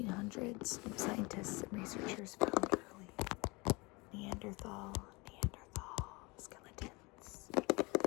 scientists and researchers found early Neanderthal skeletons.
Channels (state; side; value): quieter; right; 26.1 dB